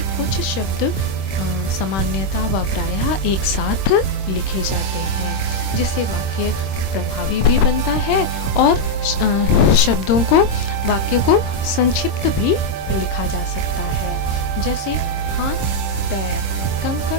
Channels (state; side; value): late; right; 26 ms